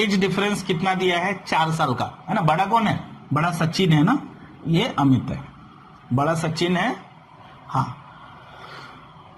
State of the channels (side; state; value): both; identical; correlation 1.00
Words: डिफरेंस कितना दिया है? 4 साल का, है ना। बड़ा कौन है? बड़ा सचिन है ना, ये अमित है। बड़ा सचिन है, हाँ।